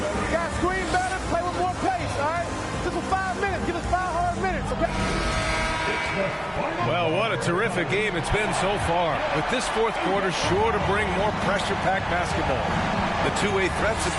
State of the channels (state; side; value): identical; both; correlation 1.00